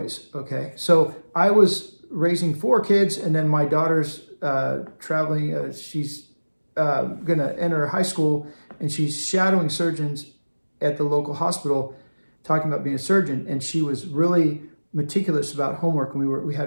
Okay. So I was raising four kids, and then my daughter's traveling. She's going to enter high school, and she's shadowing surgeons at the local hospital, talking about being a surgeon. And she was really meticulous about homework, and we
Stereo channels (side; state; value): both; inverted; correlation -1.00